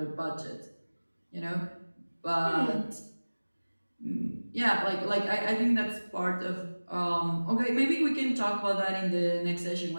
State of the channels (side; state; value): both; inverted; correlation -1.00